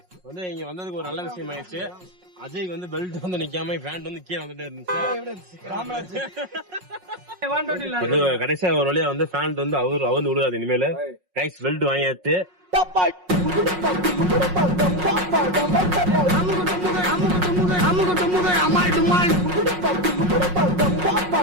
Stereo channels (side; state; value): left; late; 5.5 ms